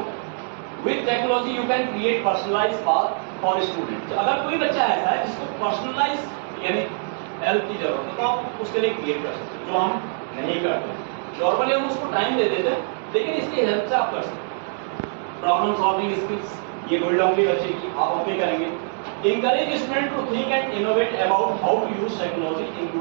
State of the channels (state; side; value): silent; left; 59 dB below the other